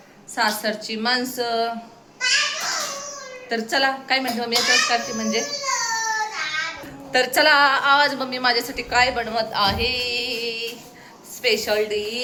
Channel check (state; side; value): identical; both; correlation 1.00